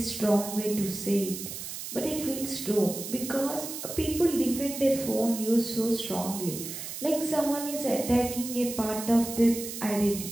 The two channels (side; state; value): right; noise; hiss, 8 dB below the sound